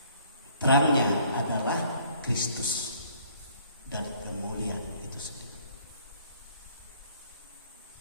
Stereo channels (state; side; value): inverted; both; correlation -0.59